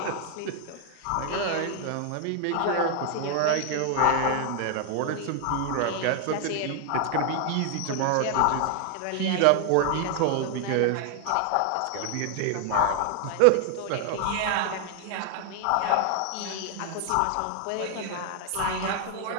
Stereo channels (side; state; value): both; different; correlation 0.00